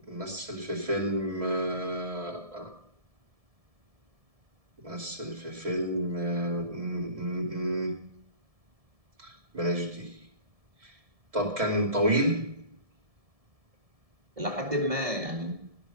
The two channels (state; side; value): late; left; 1.7 ms